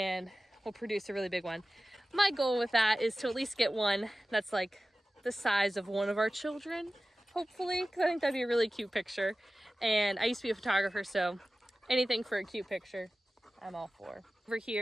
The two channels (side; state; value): both; normal; correlation 0.96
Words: will produce a really big one. My goal with that is to at least get one that's like the size of one of our children, hopefully, because I think that'd be a really cute picture. And I used to be a photographer, so anything for a cute picture, I'm all for. Over